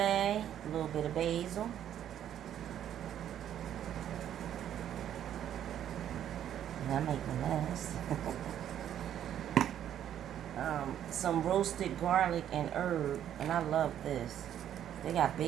a little bit of basil. And I make a mess. Some roasted garlic and herb, and I love this. They got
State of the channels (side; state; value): left; quieter; 10.5 dB